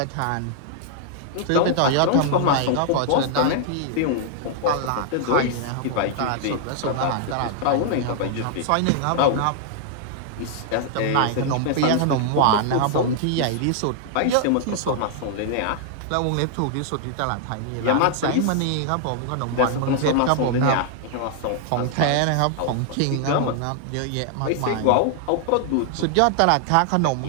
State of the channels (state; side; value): different; both; correlation -0.01